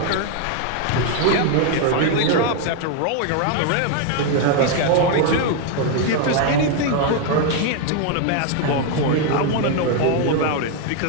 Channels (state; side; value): different; both; correlation 0.01